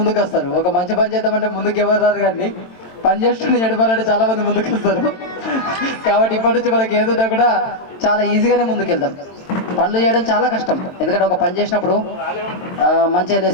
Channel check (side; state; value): right; late; 22 ms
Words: వస్తారు. ఒక మంచి పని చేద్దామంటే ముందుకు ఎవరు రారు, కానీ పని చేస్తుంటే ఎడపాలంటే చాలామంది ముందుకు వస్తారు. కాబట్టి ఇప్పటి నుంచి మనకి ఏదున్నా కూడా చాలా ఈజీగానే ముందుకెళ్తాం. పనులు చేయడం చాలా కష్టం, ఎందుకంటే ఒక పని చేసినప్పుడు మంచిగా